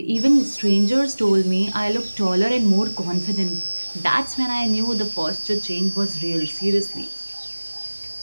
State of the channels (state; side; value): inverted; both; correlation -1.00